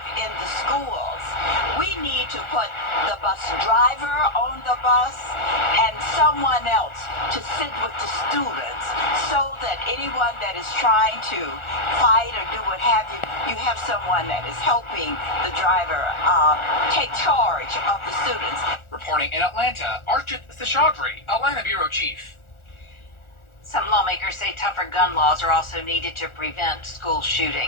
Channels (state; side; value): late; right; 1.4 ms